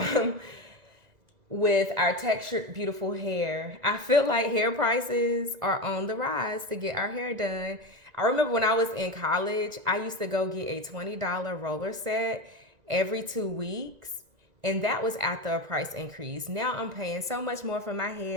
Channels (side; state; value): left; late; 1.9 ms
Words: With our textured, beautiful hair, I feel like hair prices are on the rise to get our hair done. I remember when I was in college, I used to go get a $20 roller set every 2 weeks. And that was after a price increase. Now I'm paying so much more for my